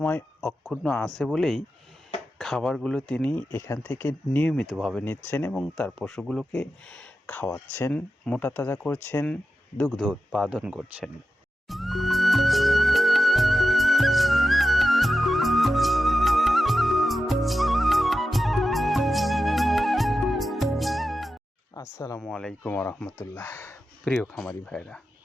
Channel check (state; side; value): normal; both; correlation 0.91